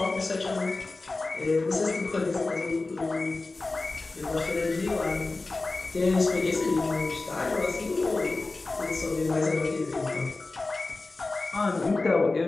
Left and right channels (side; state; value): right; quieter; 3.4 dB